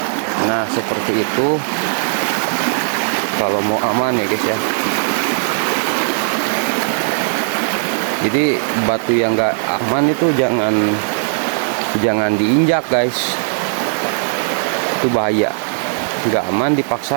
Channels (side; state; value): left; silent; digital silence